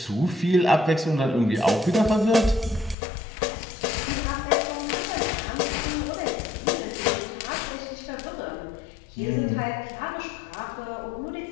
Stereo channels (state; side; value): drops out; right; at 3.0 s